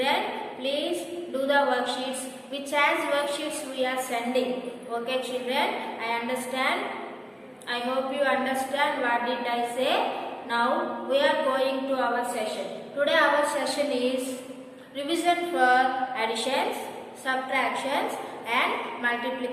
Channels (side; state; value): both; identical; correlation 1.00